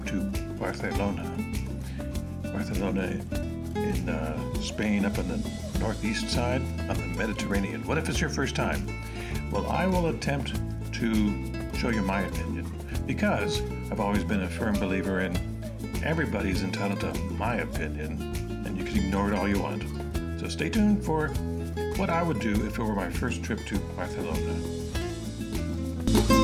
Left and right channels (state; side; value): identical; both; correlation 1.00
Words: to Barcelona? Barcelona in Spain, up on the northeast side, on the Mediterranean. What if it's your first time? Well, I will attempt to show you my opinion, because I've always been a firm believer in everybody's entitled to my opinion, and you can ignore it all you want. So stay tuned for what I would do if it were my first trip to Barcelona.